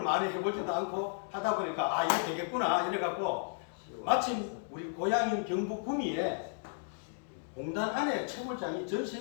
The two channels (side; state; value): right; silent; digital silence